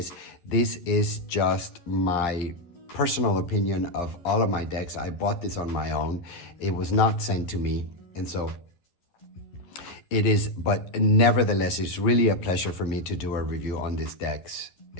This is just my personal opinion of all of my decks. I bought this on my own. It was not sent to me, and so it is, but nevertheless, it's really a pleasure for me to do a review on these decks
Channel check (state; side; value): late; right; 11 ms